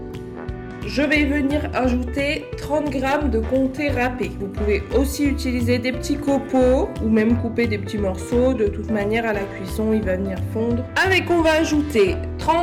Je vais venir ajouter 30 g de comté râpé. Vous pouvez aussi utiliser des petits copeaux ou même couper des petits morceaux. De toute manière, à la cuisson, il va venir fondre. Avec, on va ajouter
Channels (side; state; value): both; identical; correlation 1.00